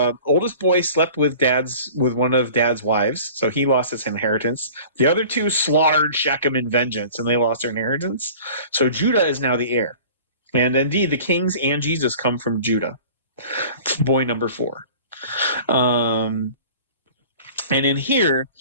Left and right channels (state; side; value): inverted; both; correlation -0.44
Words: oldest boy slept with one of Dad's wives, so he lost his inheritance. The other two slaughtered Shechem in vengeance, and they lost their inheritance. So Judah is now the heir. And indeed, the kings and Jesus come from Judah. Boy number 4. And in here,